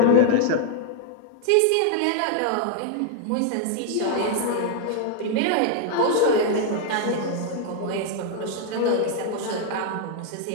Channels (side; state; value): both; different; correlation 0.00